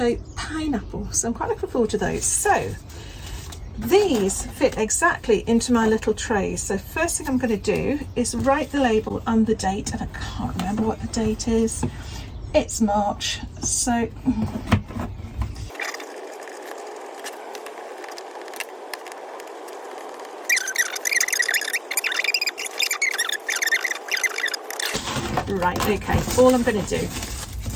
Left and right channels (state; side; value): identical; both; correlation 1.00